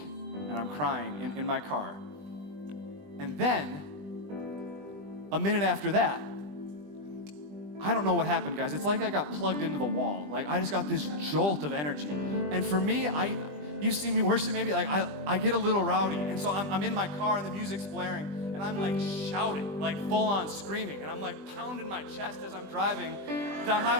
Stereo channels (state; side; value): late; left; 20 ms